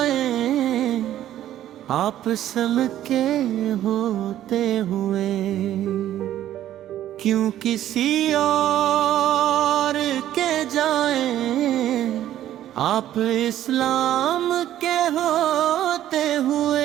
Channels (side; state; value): left; quieter; 12.3 dB